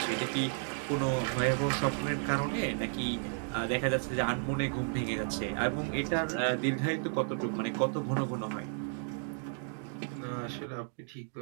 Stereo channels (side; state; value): left; silent; 56 dB below the other